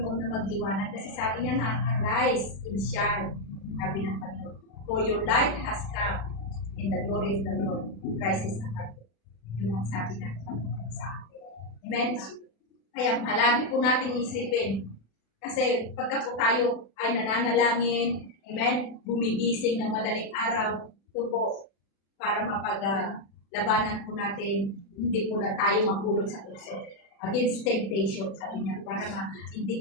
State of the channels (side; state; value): right; late; 36 ms